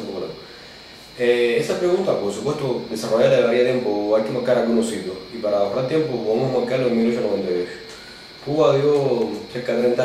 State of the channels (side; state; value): both; identical; correlation 1.00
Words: largo. Esa pregunta, por supuesto, desarrollarla llevaría tiempo, hay que marcar algunos hitos. Y para ahorrar tiempo, vamos a marcarlo en 1898. Cuba dio cerca de 30